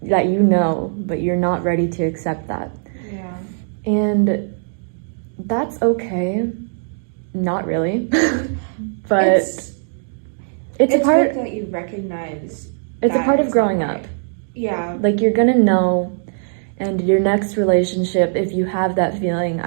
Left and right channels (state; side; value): silent; left; digital silence